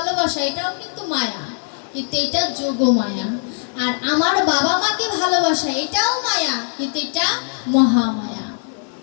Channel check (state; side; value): silent; right; 60 dB below the other